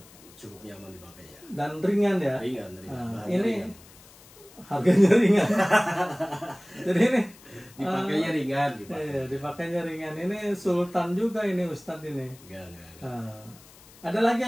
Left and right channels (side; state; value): left; noise; hiss, 23 dB below the sound